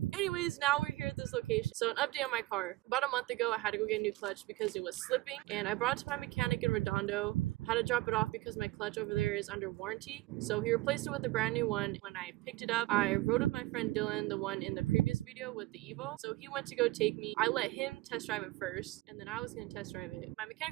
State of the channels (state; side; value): quieter; left; 19.0 dB